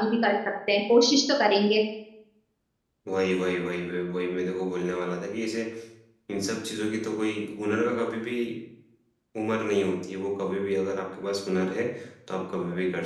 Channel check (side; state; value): both; identical; correlation 1.00